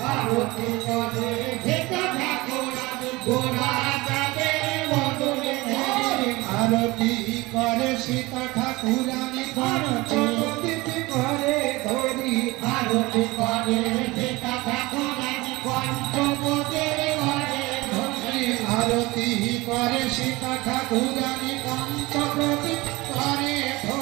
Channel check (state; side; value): quieter; left; 21.7 dB